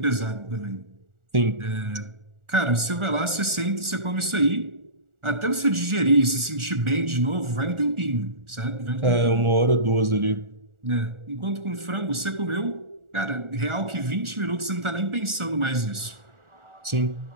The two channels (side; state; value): left; late; 1.4 ms